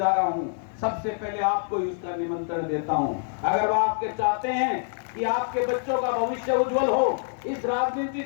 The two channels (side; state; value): right; silent; 61 dB below the other